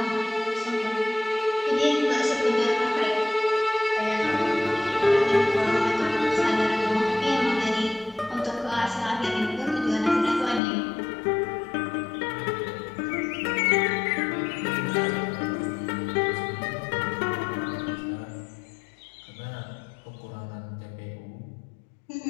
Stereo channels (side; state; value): right; drops out; at 10.6 s